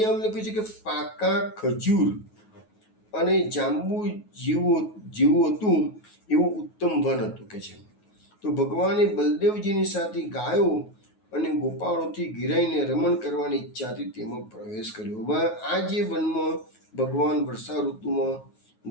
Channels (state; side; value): late; right; 9.4 ms